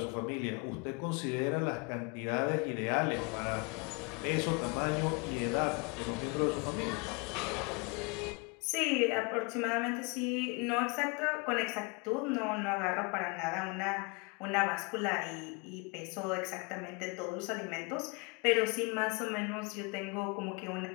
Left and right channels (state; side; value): quieter; right; 31.1 dB